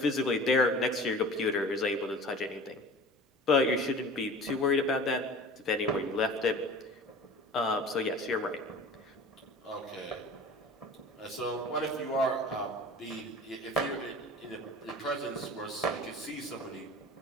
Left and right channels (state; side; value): normal; both; correlation 0.40